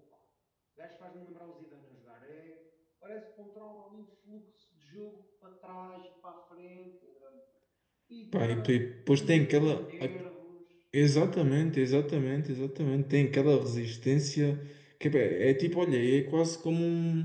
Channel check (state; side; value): identical; both; correlation 1.00